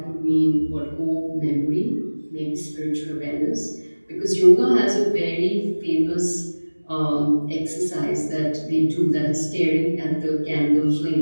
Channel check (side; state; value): both; inverted; correlation -1.00